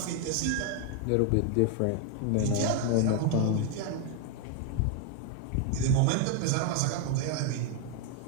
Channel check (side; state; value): both; different; correlation 0.00